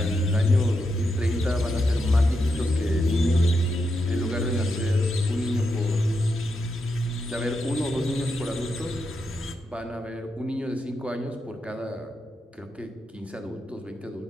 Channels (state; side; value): normal; both; correlation 0.85